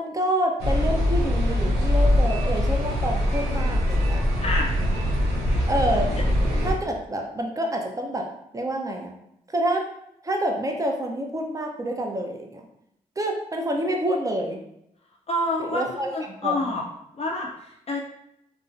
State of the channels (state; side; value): normal; both; correlation 0.73